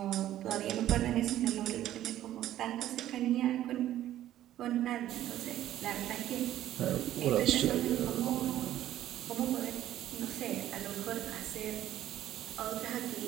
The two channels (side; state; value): left; quieter; 12.9 dB